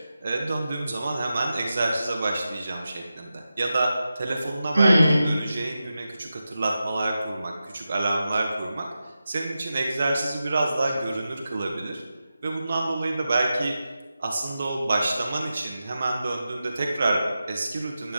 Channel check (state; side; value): inverted; both; correlation -0.91